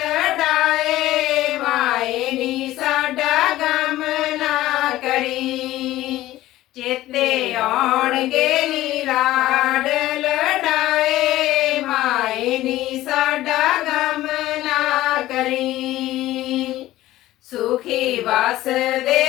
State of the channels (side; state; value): right; quieter; 15.7 dB